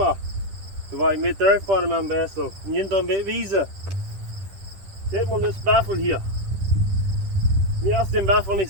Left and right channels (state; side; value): late; left; 10 ms